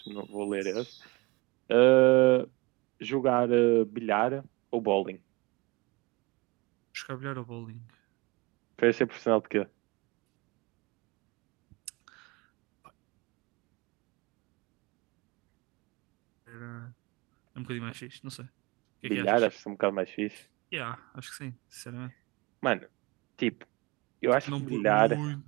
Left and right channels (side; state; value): left; quieter; 25.3 dB